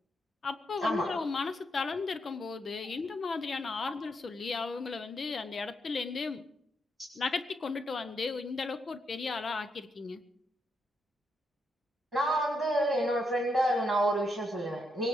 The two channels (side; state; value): both; normal; correlation 0.79